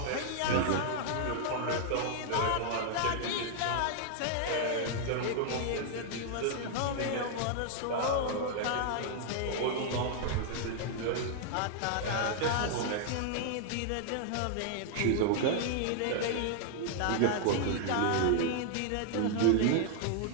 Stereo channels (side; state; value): both; different; correlation 0.00